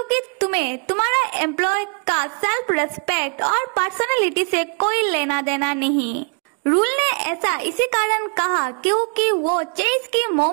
तुम्हें तुम्हारा एम्प्लॉय का सेल्फ रेस्पेक्ट और पर्सनालिटी से कोई लेना देना नहीं। रूल ने ऐसा इसी कारण कहा क्योंकि वो चेस की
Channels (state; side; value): quieter; left; 39.5 dB